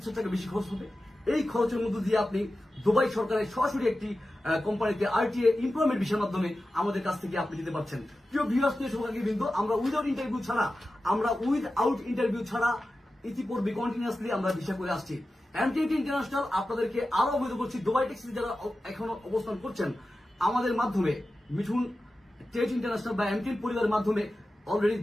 টাকা বেশি খরচ হবে। এই খরচের মধ্য দিয়ে আপনি দুবাই সরকারের সরাসরি একটি কোম্পানিতে আরটিএ এমপ্লয়মেন্ট ভিসার মাধ্যমে আমাদের কাছ থেকে আপনি যেতে পারছেন। প্রিয় ভিউয়ার্স, কিন্তু আমরা উইদাউট ইন্টারভিউ ছাড়া ইতিপূর্বে কন্টিনিউয়াসলি আমরা ভিসা করে আসছি। এমটিএটি ইন্টারন্যাশনাল আপনাদেরকে আরো অবহিত করছি, দুবাই ট্যাক্সিতে যারা এখনো অবস্থান করছেন আমাদের মাধ্যমে, মিঠুন টেট ইন্টারন্যাশনাল বা এমটিএন পরিবারের মাধ্যমে অলরেডি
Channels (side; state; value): both; normal; correlation 0.93